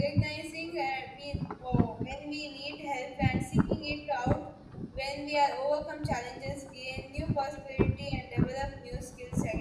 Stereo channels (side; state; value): both; identical; correlation 1.00